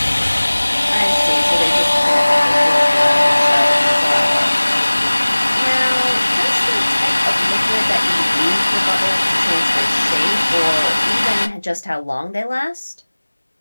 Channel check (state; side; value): inverted; both; correlation -1.00